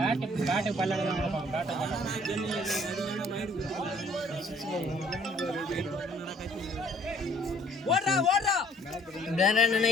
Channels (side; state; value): both; normal; correlation 0.59